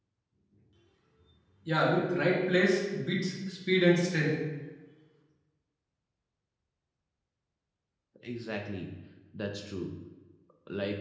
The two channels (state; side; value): identical; both; correlation 1.00